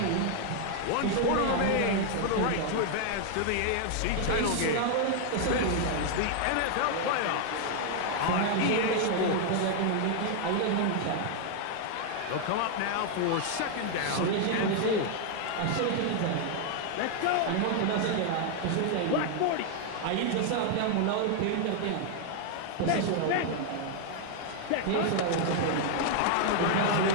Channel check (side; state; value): both; different; correlation 0.00